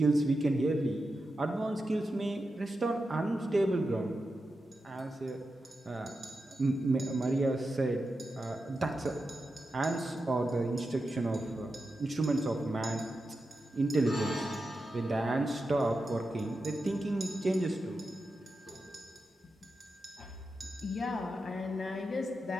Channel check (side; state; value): both; normal; correlation 0.90